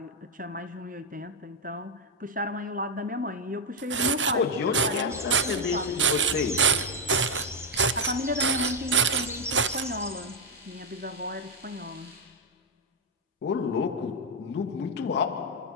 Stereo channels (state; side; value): normal; both; correlation 0.02